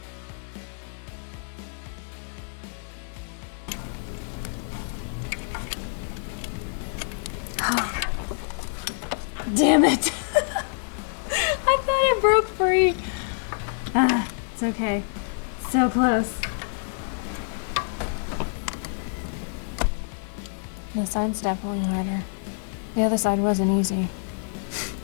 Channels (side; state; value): right; silent; 60 dB below the other